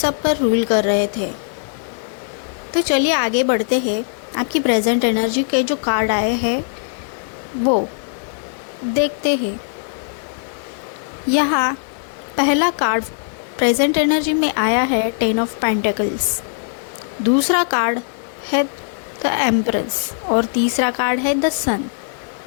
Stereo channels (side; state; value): right; silent; digital silence